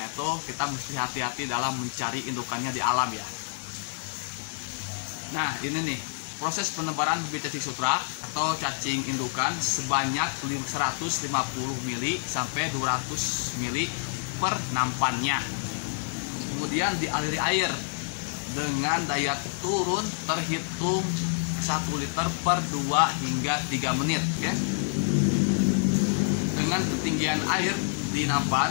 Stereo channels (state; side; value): silent; right; digital silence